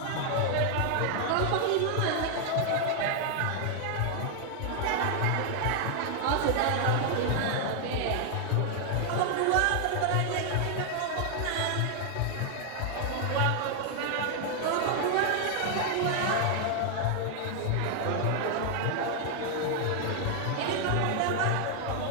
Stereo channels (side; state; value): both; different; correlation 0.00